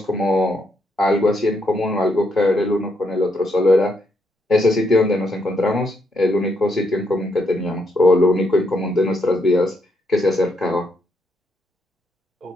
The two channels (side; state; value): both; normal; correlation 0.77